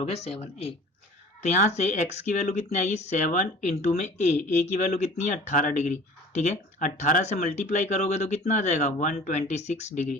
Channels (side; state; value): both; normal; correlation 0.45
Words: गया 7a। तो यहाँ से x की वैल्यू कितनी आएगी 7 इंटू में a की वैल्यू कितनी है 18 डिग्री, ठीक है। 18 से मल्टीप्लाई करोगे तो कितना आ जाएगा 126